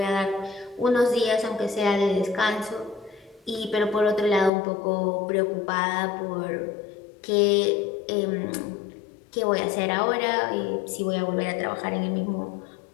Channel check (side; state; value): right; drops out; at 4.5 s